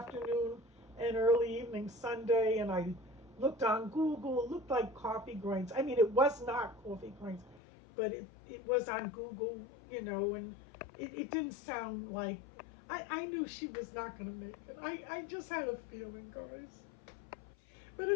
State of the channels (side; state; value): right; drops out; at 7.6 s